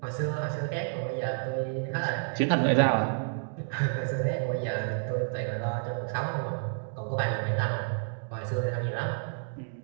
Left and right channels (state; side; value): silent; left; digital silence